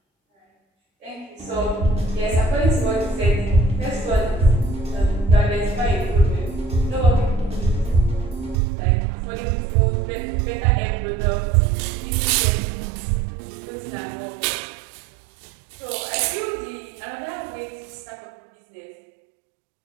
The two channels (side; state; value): left; drops out; at 8.6 s